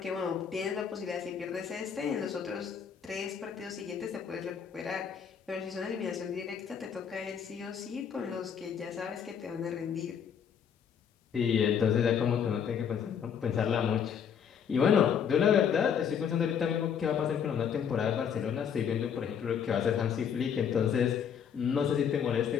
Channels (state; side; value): quieter; right; 7.7 dB